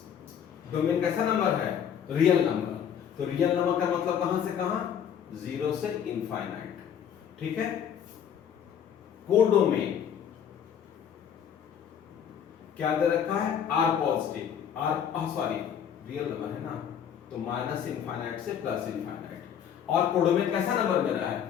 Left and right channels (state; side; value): quieter; right; 8.6 dB